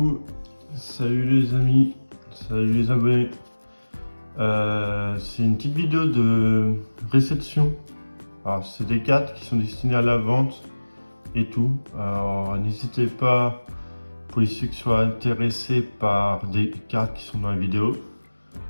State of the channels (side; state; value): both; inverted; correlation -1.00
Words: salut les amis, salut les abonnés. C'est une petite vidéo de réception. Alors, c'est des cartes qui sont destinées à la vente et tout. Alors, n'hésitez pas, pour ceux qui soient intéressés par des cartes qui sont dans la vidéo,